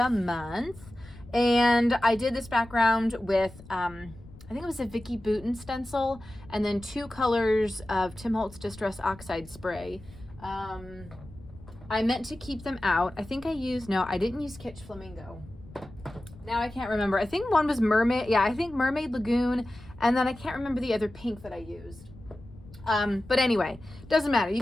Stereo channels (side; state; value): left; noise; rumble, 19 dB below the sound